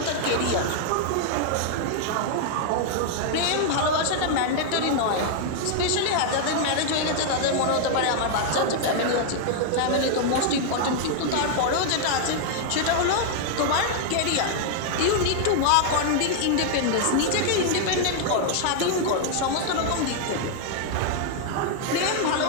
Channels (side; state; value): both; different; correlation -0.01